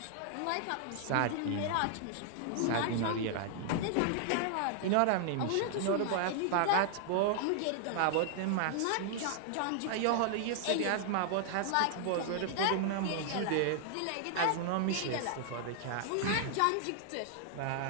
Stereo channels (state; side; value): different; both; correlation -0.01